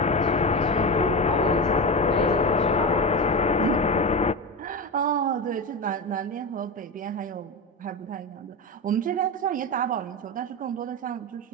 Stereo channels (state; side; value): normal; both; correlation 0.20